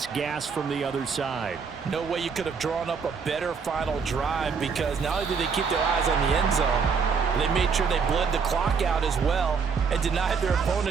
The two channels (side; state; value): left; quieter; 5.7 dB